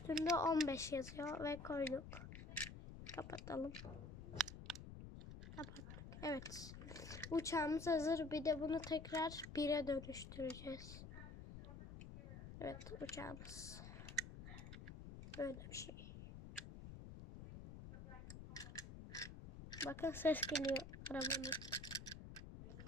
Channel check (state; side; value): noise; left; rumble, 11 dB below the sound